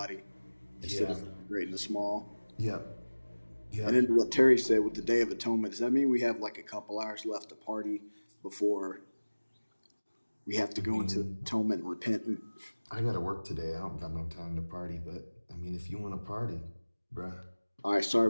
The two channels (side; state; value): both; inverted; correlation -1.00